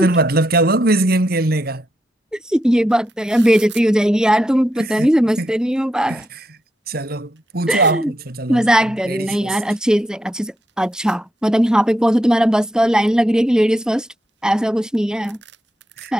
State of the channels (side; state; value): both; normal; correlation 0.82